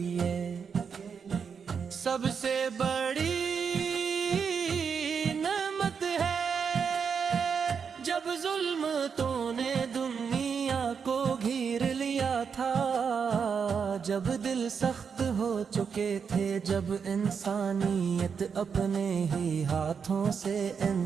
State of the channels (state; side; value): quieter; left; 6.4 dB